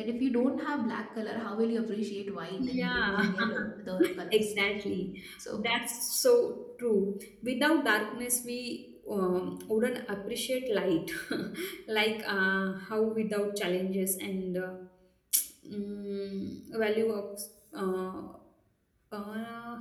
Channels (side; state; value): both; identical; correlation 1.00